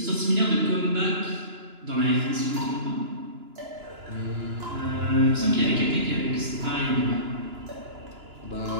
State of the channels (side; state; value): left; late; 2.9 ms